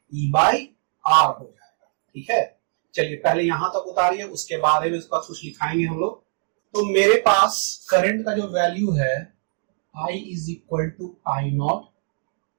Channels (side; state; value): left; silent; digital silence